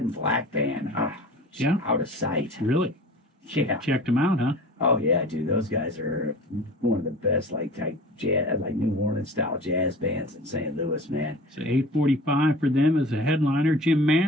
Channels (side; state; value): both; normal; correlation 0.40